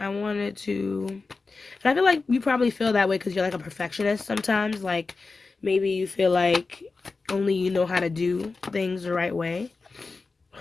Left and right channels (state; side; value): quieter; right; 4.0 dB